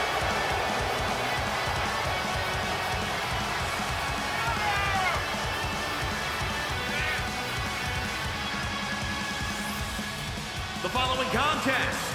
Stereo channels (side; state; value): both; identical; correlation 1.00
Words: The following contest